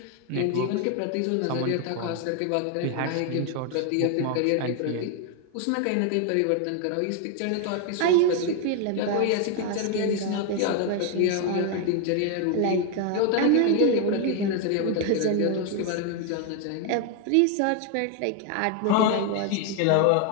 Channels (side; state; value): both; different; correlation 0.01